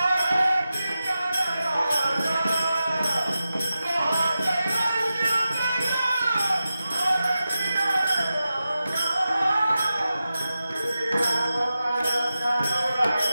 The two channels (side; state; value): both; inverted; correlation -0.92